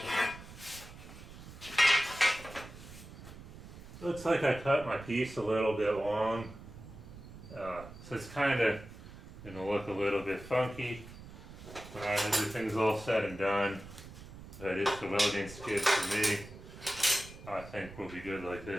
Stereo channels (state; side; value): noise; right; rumble, 15 dB below the sound